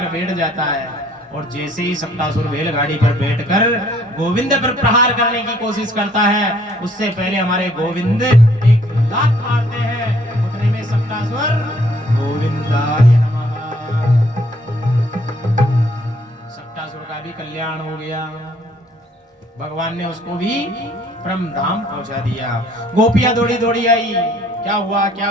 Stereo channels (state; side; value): normal; both; correlation 0.62